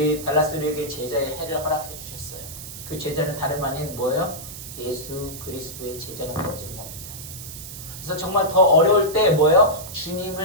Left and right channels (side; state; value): right; noise; hiss, 12 dB below the sound